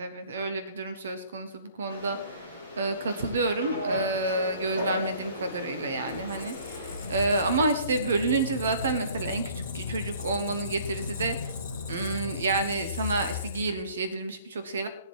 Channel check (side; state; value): both; inverted; correlation -0.55